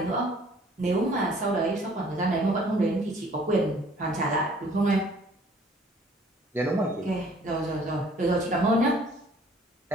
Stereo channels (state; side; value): normal; both; correlation 0.56